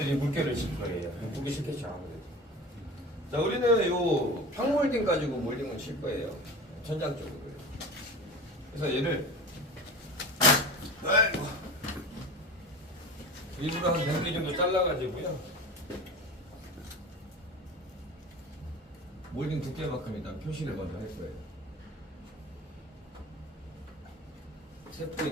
물결을 칠 거예요. 보기 싫겠죠, 아무래도. 자, 우리는 요 평몰딩 가지고 몰딩을 칠 거예요. 천장 쪽으로. 그래서 얘를 아이고, 일부러 한 100mm 정도 잘라가지고요. 몰딩 두께만큼 일단 표시를 먼저 할 거예요. 세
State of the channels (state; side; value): normal; both; correlation 0.34